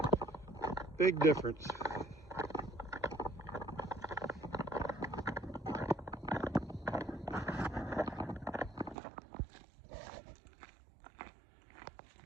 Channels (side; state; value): left; drops out; at 9.0 s